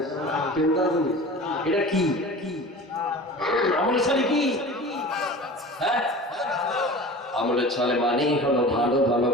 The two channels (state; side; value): normal; both; correlation 0.37